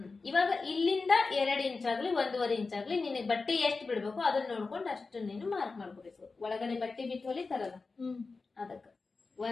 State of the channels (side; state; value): right; quieter; 4.1 dB